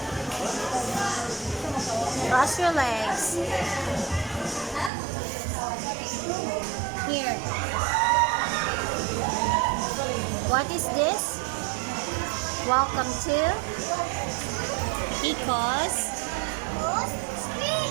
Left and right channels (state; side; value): drops out; left; at 4.9 s